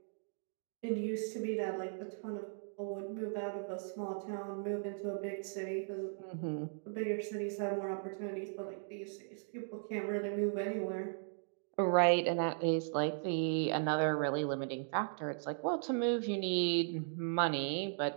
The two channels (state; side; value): silent; left; digital silence